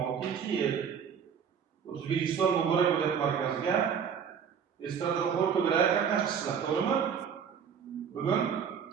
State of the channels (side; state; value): left; quieter; 7.3 dB